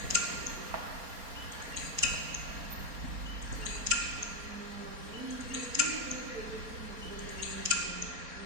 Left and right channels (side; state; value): left; late; 4.3 ms